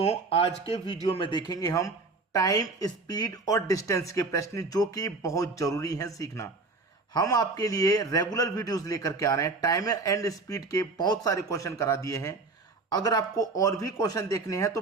आज के वीडियो में देखेंगे हम टाइम, स्पीड और डिस्टेंस के प्रश्न जो कि बहुत जरूरी हैं सीखना। हम आपके लिए रेगुलर वीडियोस लेकर के आ रहे हैं। टाइम एंड स्पीड के बहुत सारे क्वेश्चन करा दिए हैं। अगर आपको और भी क्वेश्चन देखने हैं तो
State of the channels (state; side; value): quieter; left; 3.7 dB